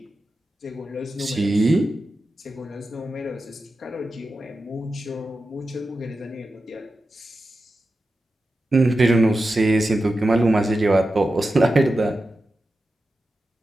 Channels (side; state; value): both; normal; correlation 0.92